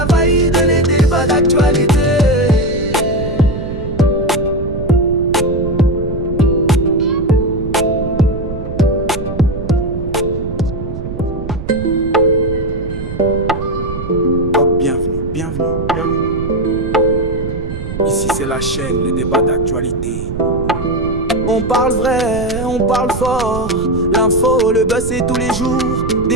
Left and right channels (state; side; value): noise; right; rumble, 7 dB below the sound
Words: vaïde, les débats d'actualité. Bienvenue, bienvenue, bienvenue. chaîne, les débats d'actualité. On parle vrai, on parle fort. L'info, le buzz, c'est tous les jours.